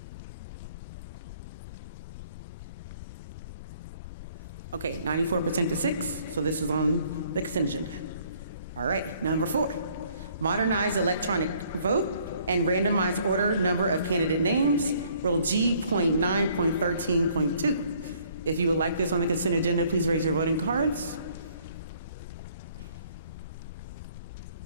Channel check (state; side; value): inverted; both; correlation -0.62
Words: Okay, 94% to 6, so this is on the consent agenda. All right, number 4, modernize electronic vote and randomize order number of candidate names, Rule G.9.13.2. If you would like this on the consent agenda, please raise your voting cards.